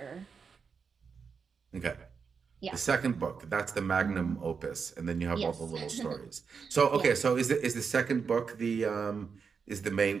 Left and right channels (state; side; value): quieter; left; 5.8 dB